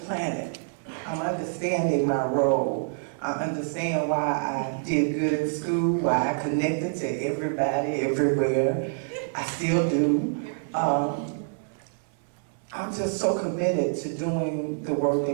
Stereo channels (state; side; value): silent; left; 60 dB below the other